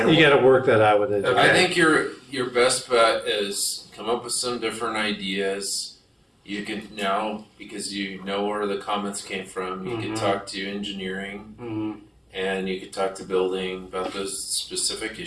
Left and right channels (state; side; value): identical; both; correlation 1.00